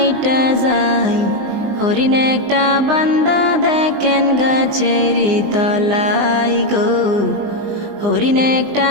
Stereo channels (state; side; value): late; left; 20 ms